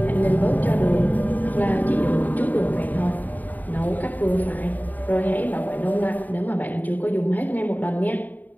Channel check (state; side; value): late; right; 0.083 ms